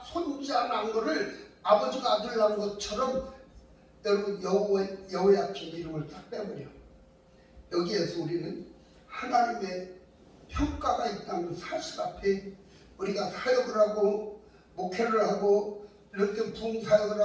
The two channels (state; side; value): identical; both; correlation 1.00